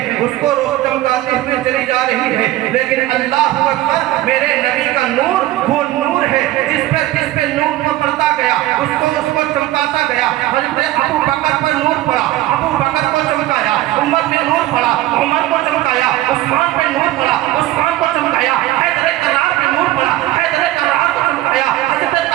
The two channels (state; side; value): quieter; left; 15.8 dB